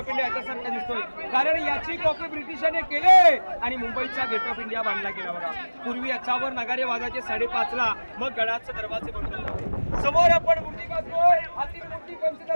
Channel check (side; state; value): both; inverted; correlation -1.00